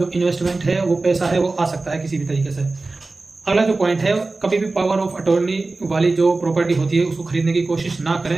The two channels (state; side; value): quieter; left; 3.5 dB